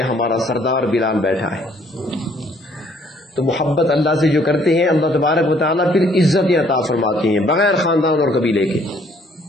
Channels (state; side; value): normal; both; correlation 0.63